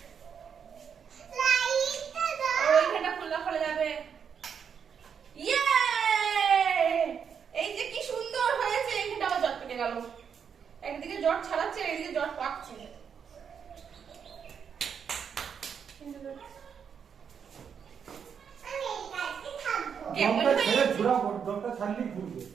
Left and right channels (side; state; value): left; quieter; 7.2 dB